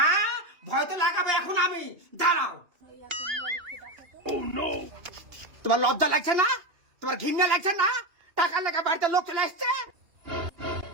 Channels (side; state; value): left; late; 2.8 ms